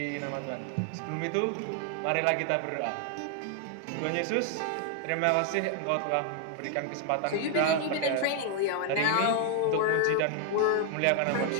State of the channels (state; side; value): different; both; correlation 0.00